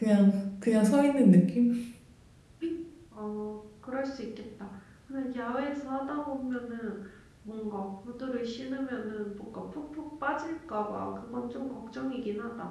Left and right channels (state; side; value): identical; both; correlation 1.00